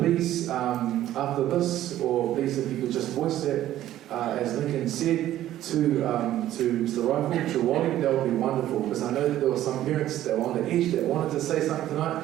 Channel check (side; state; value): left; quieter; 13.1 dB